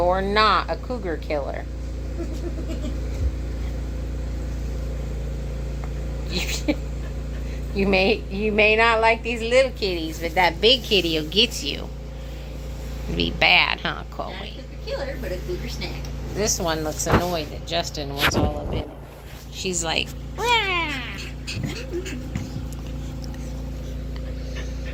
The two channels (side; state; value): both; identical; correlation 1.00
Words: not a cougar killer. You may not like these little kitties, but that big kitty will get you. It'd be bad, huh, Chloe? Not a cougar killer, but a cougar snack. This one looks annoyed that Justin wants all of it. She's like, "Wah!"